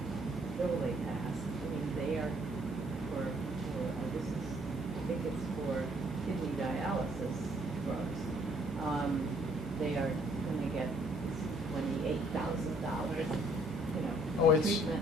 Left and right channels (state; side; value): normal; both; correlation 0.64